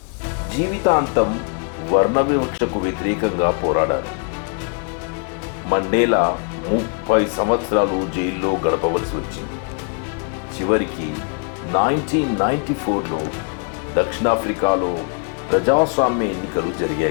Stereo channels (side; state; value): right; quieter; 37.5 dB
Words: జీవితాంతం వర్ణ వివక్షకు వ్యతిరేకంగా పోరాడారు. మండేలా 30 సంవత్సరాలు జైల్లో గడపవలసి వచ్చింది. చివరికి 1994లో దక్షిణాఫ్రికాలో ప్రజాస్వామ్య ఎన్నికలు